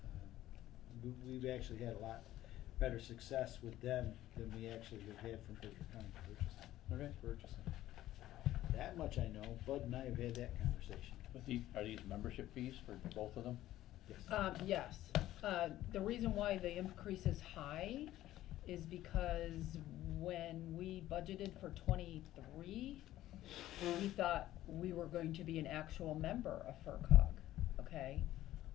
We've actually had a lot better success with them than we actually have had from Berkshire County purchasing. That much I know. Bud and I have had that conversation. But are these membership fees for both of them? Yes. Yes. The reason why the increase is high is because when we budgeted for 23, we thought we were going to be an actual member of FERCog, okay?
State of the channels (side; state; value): right; quieter; 14.3 dB